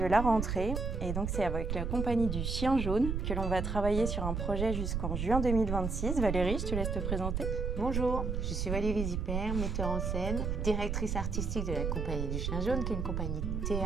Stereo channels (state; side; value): noise; right; rumble, 1 dB below the sound